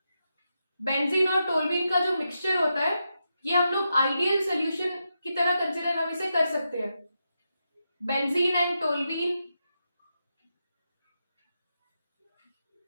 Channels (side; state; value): both; inverted; correlation -0.86